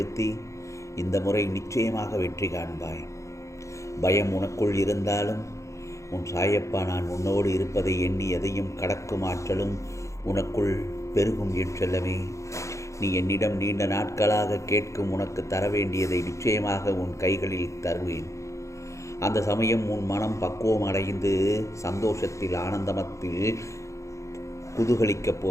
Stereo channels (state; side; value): late; right; 0.15 ms